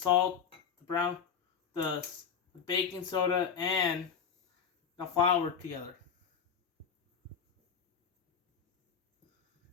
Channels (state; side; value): quieter; right; 7.1 dB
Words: the baking soda, and the flour together.